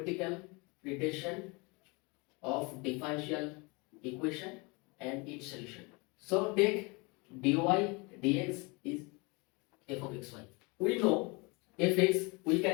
interpretation of differential equation and its solution. So take dy dx is f of xy. We know fx, we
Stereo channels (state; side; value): quieter; right; 28.3 dB